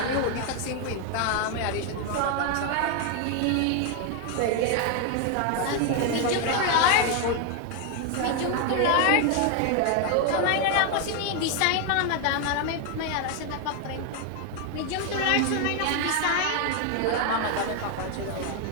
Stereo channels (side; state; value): both; different; correlation 0.01